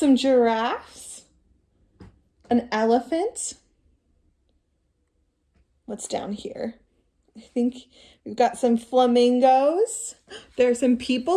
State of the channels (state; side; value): identical; both; correlation 1.00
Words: giraffes, an elephant. What's down here? I think we've got some flamingos. There are some